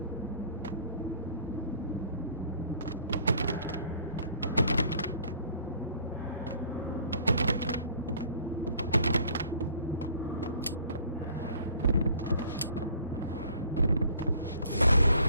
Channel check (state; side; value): inverted; both; correlation -0.55